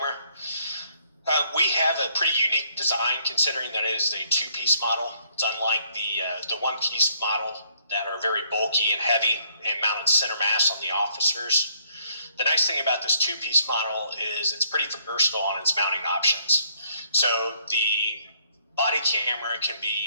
We have a pretty unique design considering that it is a two-piece model. It's unlike the one-piece model that are very bulky and heavy and mounted center mass on the officers. The nice thing about this two-piece model is it's pretty versatile on its mounting options. So the body camera can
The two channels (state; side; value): inverted; both; correlation -0.66